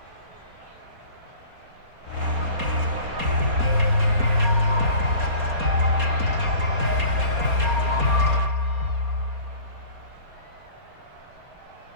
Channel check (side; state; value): left; late; 4.2 ms